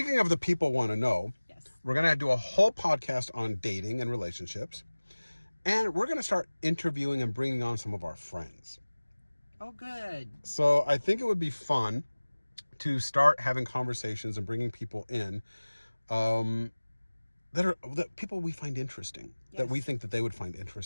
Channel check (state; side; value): inverted; both; correlation -1.00